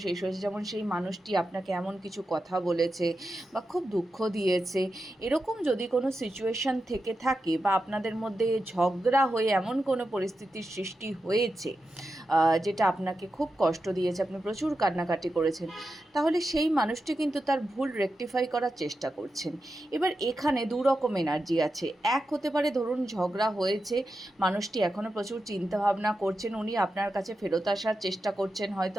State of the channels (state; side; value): normal; both; correlation 0.90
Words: শেষ হয়েছে, যেমন সেই মানুষটি আপনাকে এমন কিছু কথা বলেছে বা খুব দুঃখ দিয়েছে। এরকম যদি কোনো সিচুয়েশান থেকে থাকে বা আপনাদের মধ্যে ঝগড়া হয়ে এমন কোনো পরিস্থিতির সৃষ্টি হয়েছে যেটা আপনাকে খুব কষ্ট দিয়েছে, আপনি প্রচুর কান্নাকাটি করেছেন, তাহলে সেই মানুষটি কিন্তু তার ভুল রেকটিফাই করার চেষ্টা করছেন। এবার এখানে দু রকম এনার্জি আছে। এক হতে পারে, ধরুন ঝগড়া হয়েছে, মানুষটি এখনও প্রচুর চিন্তাভাবনা করছেন, উনি আপনার কাছে ফেরত আসার চেষ্টা করছেন, হয়তো